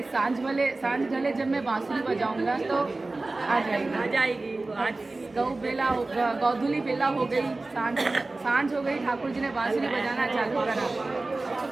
सांझ ढले जब मैं बांसुरी बजाऊंगा तो आ जाएगी। आज गौधुली बेला हो गई, सांझ हो गई, ठाकुर जी ने बांसुरी बजाना चालू करा। तो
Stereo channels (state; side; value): quieter; left; 3.2 dB